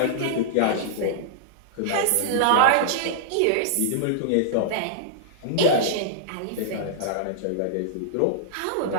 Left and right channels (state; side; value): different; both; correlation -0.02